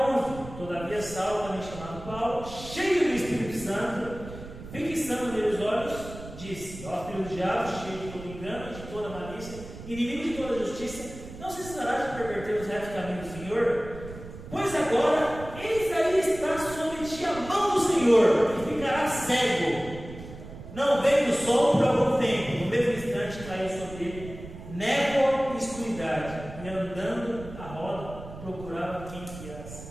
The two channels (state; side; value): noise; right; rumble, 13 dB below the sound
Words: 11. Todavia Saulo, também chamado Paulo, cheio do Espírito Santo, fixando nele os olhos, disse: ó filho do diabo, cheio de todo engano, de toda malícia, inimigo de toda justiça, não cessará de perverter os retos caminhos do Senhor? Pois agora, eis aí está sobre ti a mão do Senhor, e ficará cego. Não veio do sol por algum tempo, no mesmo instante caiu sobre ele névoa e escuridade, e andando a roda, procurava quem guiasse.